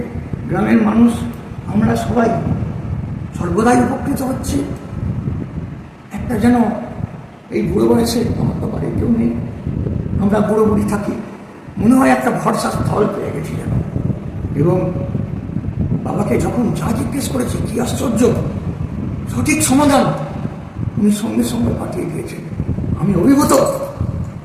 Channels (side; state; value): both; identical; correlation 1.00